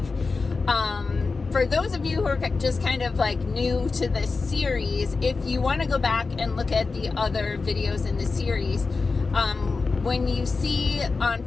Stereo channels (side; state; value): right; quieter; 4.2 dB